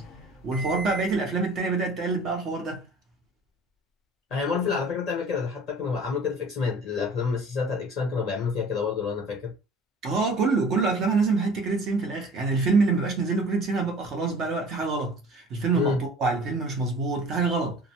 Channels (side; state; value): both; normal; correlation 0.46